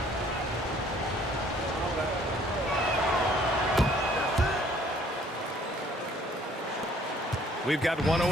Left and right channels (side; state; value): both; normal; correlation 0.59